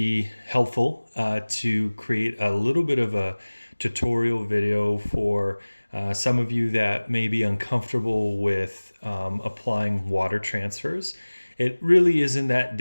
helpful to create a little bit of a tutorial video for some of you that may be uncomfortable with applying water transfers. It really isn't that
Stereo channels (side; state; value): both; inverted; correlation -1.00